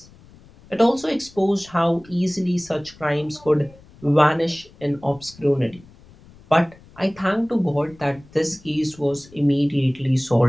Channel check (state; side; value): noise; left; rumble, 24 dB below the sound